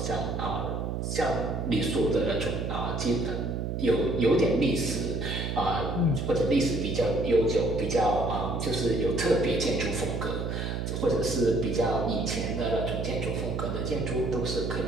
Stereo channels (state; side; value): noise; right; hum, 2 dB below the sound